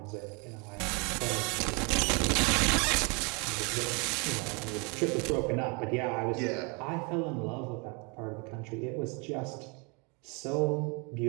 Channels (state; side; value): quieter; left; 31.8 dB